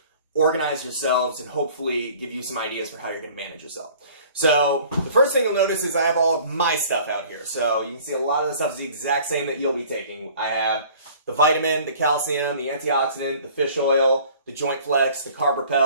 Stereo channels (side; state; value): both; inverted; correlation -0.50